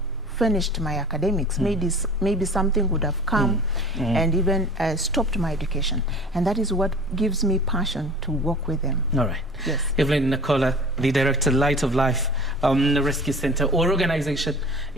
finished my academics. Maybe something would have come and even stopped my education. And that is what gives me passion to work with them. All right. Yes. Evelyn Nakola, the Director, Light of Life Rescue Center or organization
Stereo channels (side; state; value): both; normal; correlation 0.42